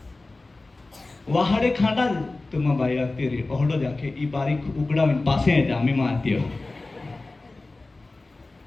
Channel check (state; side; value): quieter; right; 3.2 dB